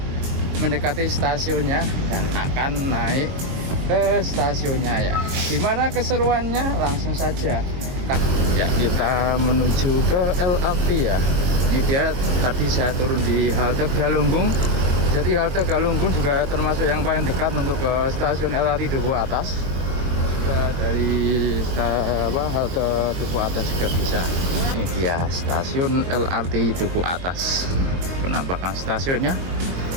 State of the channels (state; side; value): late; left; 22 ms